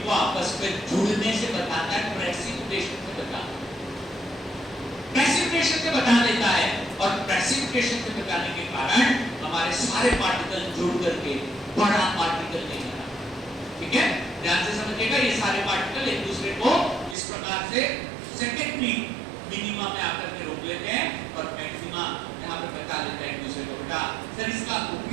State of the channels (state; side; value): drops out; left; at 17.2 s